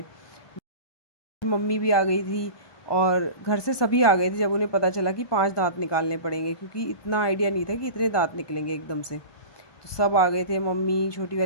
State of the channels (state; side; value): late; right; 1.2 ms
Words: मम्मी भी आ गई थी और घर से सभी आ गए थे जब उन्हें पता चला कि 5 दांत निकालने पड़ेंगे, क्योंकि इतना आइडिया नहीं था कि इतने दांत निकलेंगे एकदम से। तो सब आ गए थे, मम्मी, छोटी